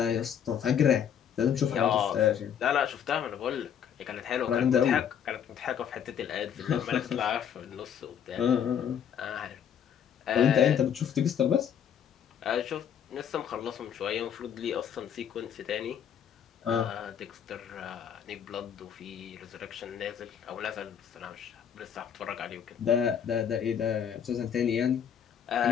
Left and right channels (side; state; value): right; quieter; 8.5 dB